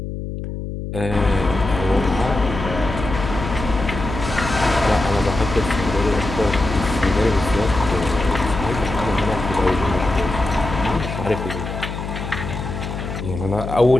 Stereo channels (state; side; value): noise; left; hum, 6 dB below the sound